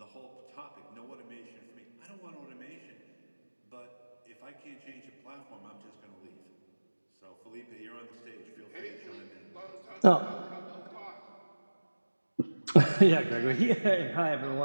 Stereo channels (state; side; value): inverted; both; correlation -1.00